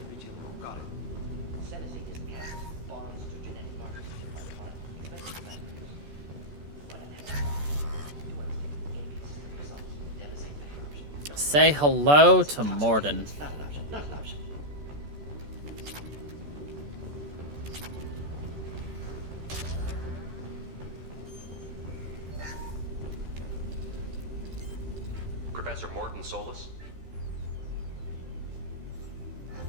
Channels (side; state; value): left; late; 14 ms